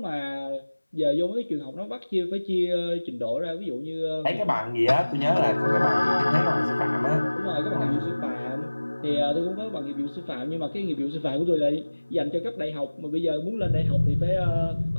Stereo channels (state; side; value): inverted; both; correlation -1.00